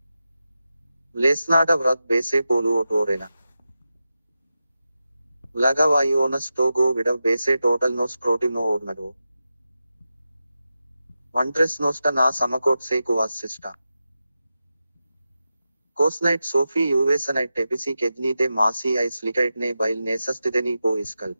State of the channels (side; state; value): both; inverted; correlation -0.91